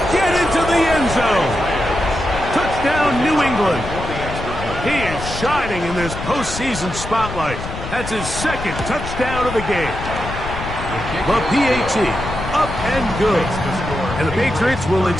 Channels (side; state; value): left; noise; rumble, 8 dB below the sound